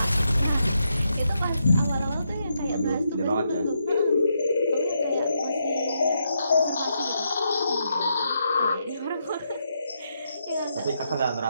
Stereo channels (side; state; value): both; inverted; correlation -0.81